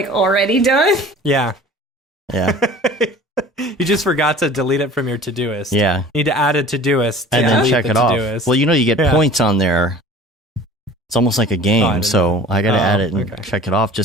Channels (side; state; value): both; normal; correlation 0.44